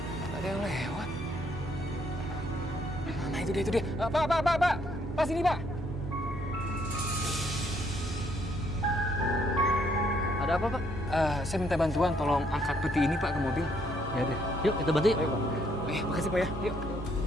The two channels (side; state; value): both; normal; correlation 0.69